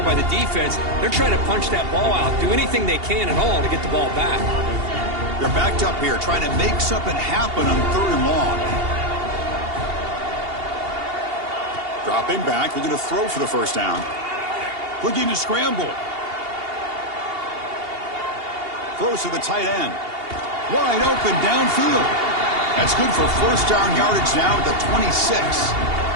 by the defense. They're trying to punch that ball out, do anything they can at all to get the ball back. They're backed up here trying to make something happen on 3rd and long. Dropping back, looking to throw for the 1st down. Looking to scramble. Throws to the tight end. Wide open downfield. That's good for 1st down yardage now at the 26.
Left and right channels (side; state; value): left; late; 2.8 ms